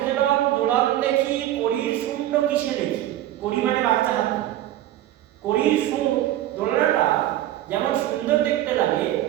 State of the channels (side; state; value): left; quieter; 13.6 dB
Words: হেলন দোলন দেখি, করির শূন্য কিসে দেখি। করি মানে বাচ্চা হাতি, করির সুর দোলনাটা যেমন সুন্দর দেখতে লাগে,